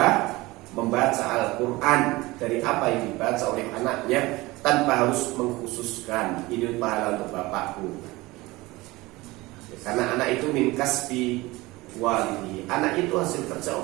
membaca Al-Quran dari apa yang dibaca oleh anaknya tanpa harus mengkhususkan ini pahala untuk bapakku, karena anak itu min kasbi walidi, anak itu hasil kerja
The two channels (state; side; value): quieter; left; 20.9 dB